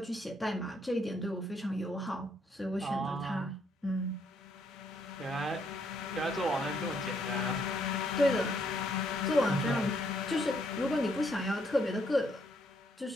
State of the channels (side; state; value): both; normal; correlation 0.71